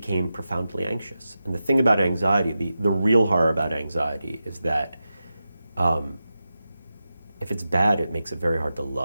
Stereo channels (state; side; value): inverted; both; correlation -0.91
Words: profoundly anxious. And the thing about anxiety, the real horror about anxiety is that if it's bad, it makes it very hard to